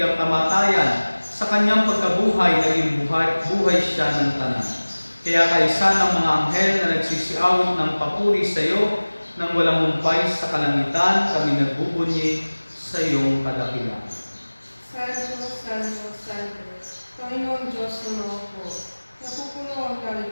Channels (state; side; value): inverted; both; correlation -1.00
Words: ang kamatayan. Sa kanyang pagkabuhay, naging buhay siya ng tanan. Kaya kaisa ng mga anghel na nagsisiawit ng papuri sa iyo, nang walang humpay sa kalangitan, kami nagbubunyi sa iyong kadakilaan. Santo, Santo, Santo, Panginoon Diyos ng mga po, napupuno ang langit